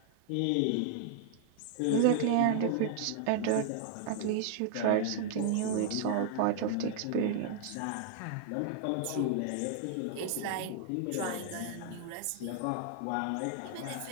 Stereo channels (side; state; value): both; different; correlation 0.00